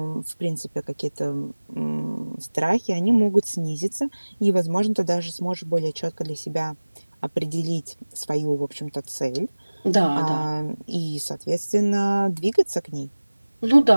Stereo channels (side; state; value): both; inverted; correlation -1.00